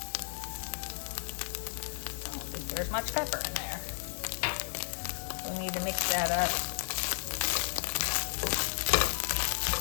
don't think there's much pepper in there. We need to mix that up.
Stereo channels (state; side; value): silent; right; digital silence